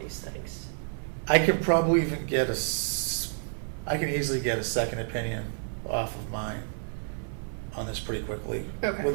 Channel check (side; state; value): left; silent; digital silence